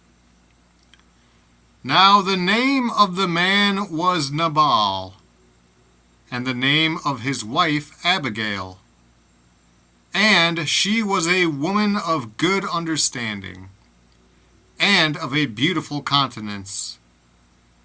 Now the name of the man was Nabal, and the name of his wife Abigail. And she was a woman of good understanding, and of a beautiful countenance.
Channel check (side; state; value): both; identical; correlation 1.00